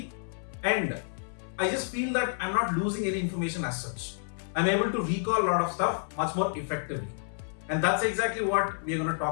and I just feel that I'm not losing any information as such. I'm able to recall a lot of stuff much more effectively. And that's exactly what we're going to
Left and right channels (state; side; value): silent; right; 58 dB below the other